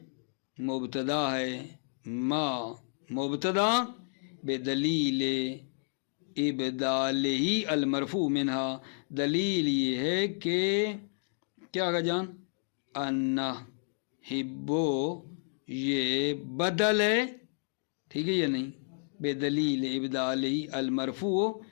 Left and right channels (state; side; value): silent; right; digital silence